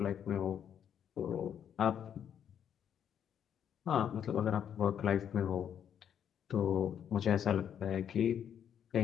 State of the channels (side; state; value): right; quieter; 8.9 dB